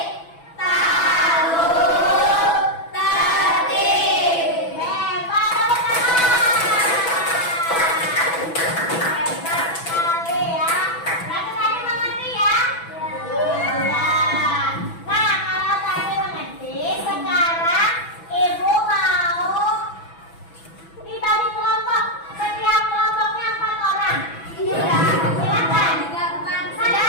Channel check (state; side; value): late; right; 6.0 ms